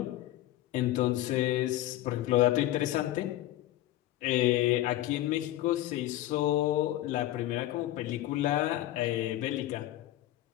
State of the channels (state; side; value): quieter; right; 14.8 dB